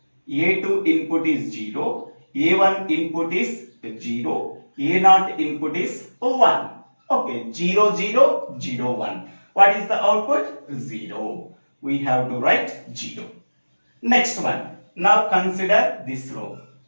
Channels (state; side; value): inverted; both; correlation -1.00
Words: A2 input is 0, A1 input is 0, A0 input is 1. Okay, 0, 0, 0, 1. What is the output? 0. We have to write 0. Next one. Now consider this row.